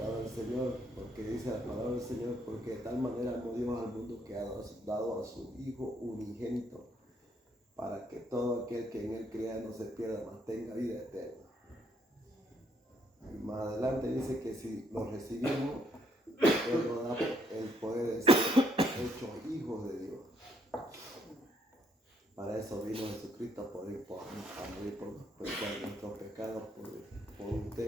del Señor, porque dice la palabra del Señor, porque de tal manera amó Dios al mundo que ha dado a su Hijo unigénito, para que todo aquel que en Él crea no se pierda, mas tenga vida eterna. Y más adelante dice que si lo recibimos, Él nos da el poder de ser hechos hijos de Dios. Para eso vino Jesucristo, a morir por nuestros pecados, por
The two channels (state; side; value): normal; both; correlation 0.71